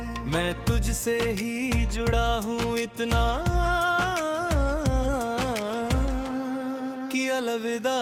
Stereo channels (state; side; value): identical; both; correlation 1.00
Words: मैं तुझसे ही जुड़ा हूँ इतना कि अलविदा